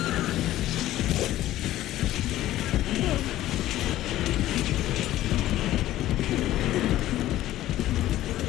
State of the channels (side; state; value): right; quieter; 14.5 dB